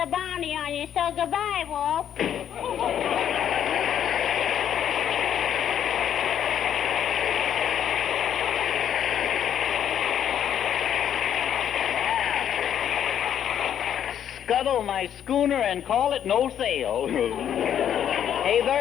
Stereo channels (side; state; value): right; quieter; 9.6 dB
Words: bounty on you. So goodbye, Wolf. Scuttle my schooner and call it no sail. Hey,